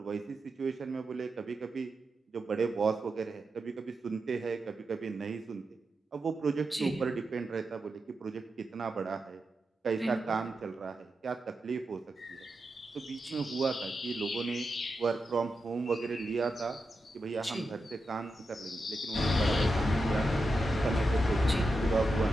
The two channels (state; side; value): normal; both; correlation 0.88